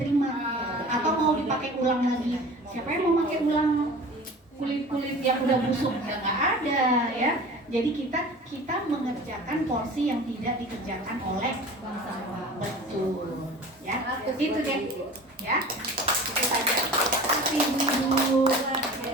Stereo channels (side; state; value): both; normal; correlation 0.40